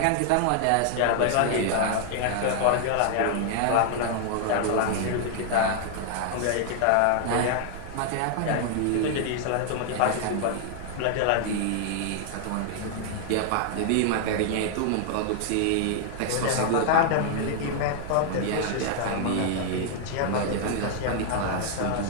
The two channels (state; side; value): different; both; correlation 0.00